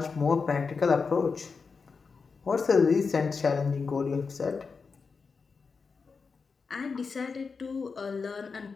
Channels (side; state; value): right; quieter; 5.0 dB